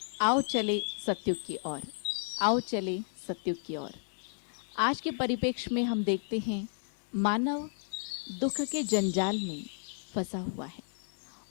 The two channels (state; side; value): silent; right; digital silence